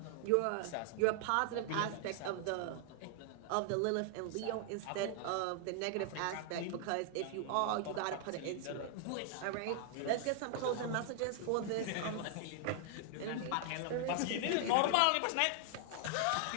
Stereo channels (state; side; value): different; both; correlation 0.00